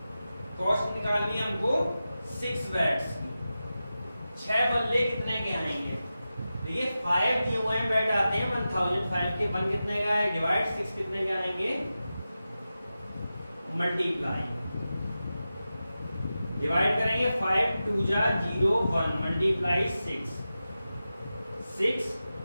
कॉस्ट निकालनी है हमको 6 बैट्स की। 6 बल्ले कितने के आएंगे देखिए 5 दिए हुए हैं, बैठ आते हैं 1005 के 1 कितने का है, डिवाइड 6 कितने के आएंगे, मल्टीप्लाई, डिवाइड करेंगे 5 2 जा 0 1 मल्टीप्लाई 6 6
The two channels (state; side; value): inverted; both; correlation -0.93